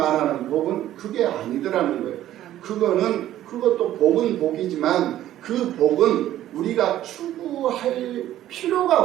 복은 그게 아니더라는 거예요. 그것도 복은 복이지만 그 복은 우리가 추구할 필요가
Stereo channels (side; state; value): left; quieter; 13.0 dB